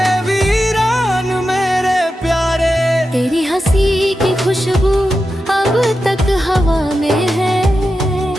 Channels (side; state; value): both; normal; correlation 0.90